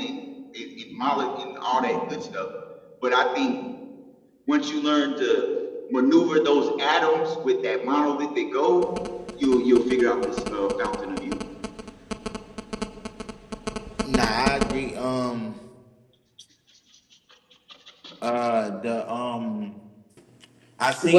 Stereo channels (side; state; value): both; identical; correlation 1.00